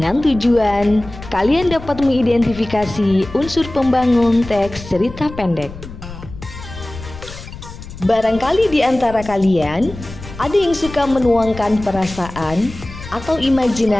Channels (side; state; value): left; noise; rumble, 14 dB below the sound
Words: tujuan, kalian dapat mengidentifikasi unsur pembangun teks cerita pendek. Barangkali di antara kalian, ada yang suka menuangkan perasaan atau